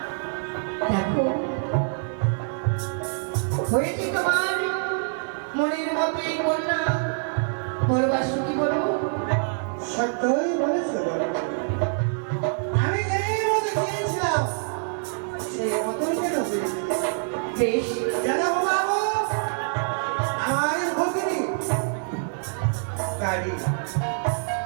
দেখো হয়েছে তোমার মনের মতোই কন্যা বলো বাসুকি বলো সত্যই বলেছো আমি যেই মতো চেয়েছিলাম সেই মতোই কেন হয়েছে বেশ জানো বাবু আমাদের ভগিনী কারি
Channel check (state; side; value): silent; left; digital silence